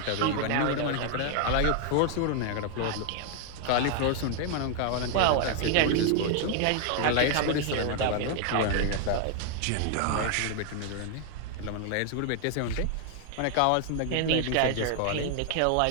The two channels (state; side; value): different; both; correlation 0.00